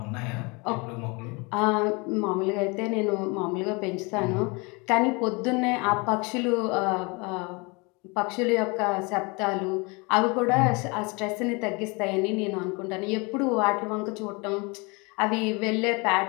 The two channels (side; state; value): right; quieter; 28.5 dB